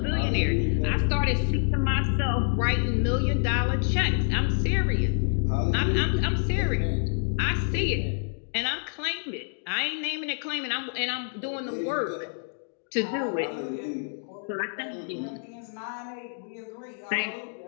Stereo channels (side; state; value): right; silent; 60 dB below the other